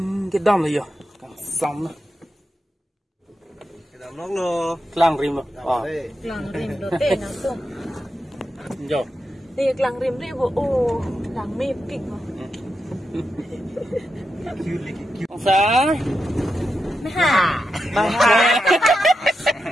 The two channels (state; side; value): normal; both; correlation 0.87